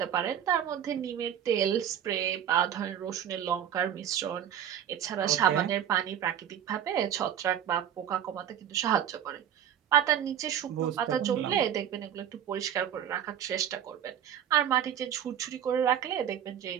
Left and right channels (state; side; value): quieter; left; 9.7 dB